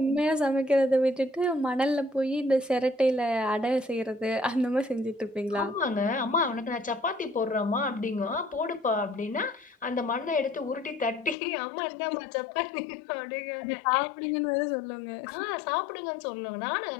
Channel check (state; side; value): drops out; right; at 11.4 s